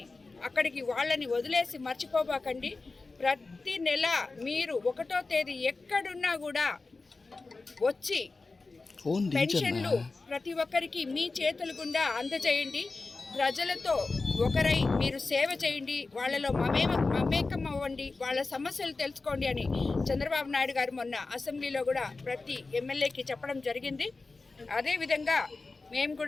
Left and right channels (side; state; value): right; quieter; 3.7 dB